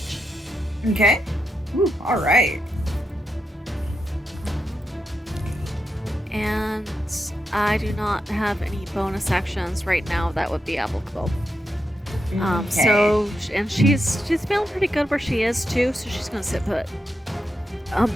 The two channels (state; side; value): normal; both; correlation 0.86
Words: Okay. Ooh, all right. And I do not have any bonus actions right now that would be applicable. Okay. So, and she's feeling pretty good where she is too, so she's gonna sit put.